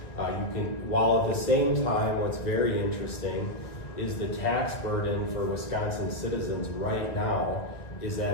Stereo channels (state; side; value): late; right; 1.6 ms